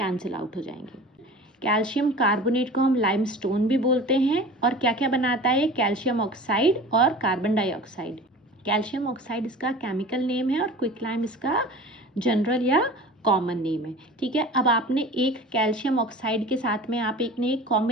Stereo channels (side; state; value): both; normal; correlation 0.39